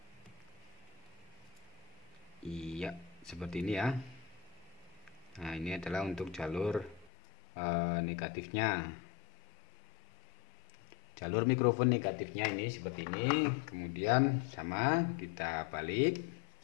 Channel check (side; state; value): right; drops out; at 7.1 s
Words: Iya, seperti ini ya. Nah, ini adalah untuk jalur negatifnya. Jalur mikrofon negatifnya ini seperti ini. Kemudian sama kita balik.